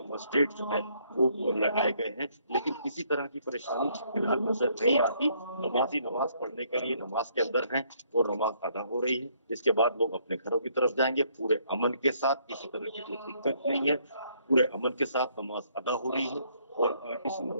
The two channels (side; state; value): both; inverted; correlation -0.68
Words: मजिस्ट्रेट जो है वो लगाए गए हैं, लेकिन किसी तरह की परेशानी फिलहाल नजर नहीं आती। नमाजी नमाज पढ़ने के लिए नमाज के अंदर हैं और नमाज अदा हो रही है। इसके बाद लोग अपने घरों की तरफ जाएंगे पूरे अमन के साथ, किसी तरह की कोई दिक्कत नहीं है। पूरे अमन के साथ नमाज अदा हो रही है और इस